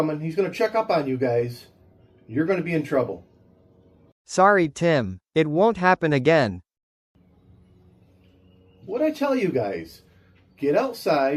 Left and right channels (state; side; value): identical; both; correlation 1.00